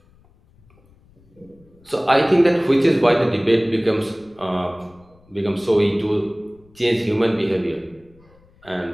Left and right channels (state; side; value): noise; left; rumble, 30 dB below the sound